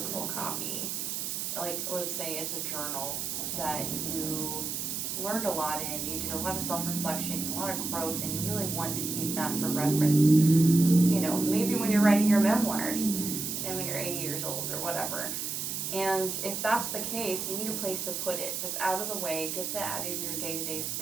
copy, like let's say it's a journal that you learned a lot in, you did a lot of self-reflection, a lot of growth, and you really want to keep that for reference. You know, maybe when you're writing your memoirs and when you're 80 years old or whatever. And if that's the case, you need a place to put it that's out of the way, gets it out of your day-to-day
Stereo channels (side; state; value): right; noise; hiss, 3 dB below the sound